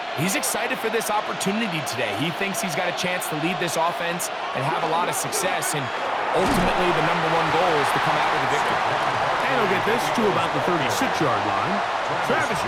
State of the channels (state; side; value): identical; both; correlation 1.00